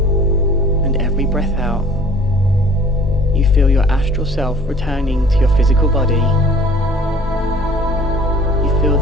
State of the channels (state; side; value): normal; both; correlation 0.51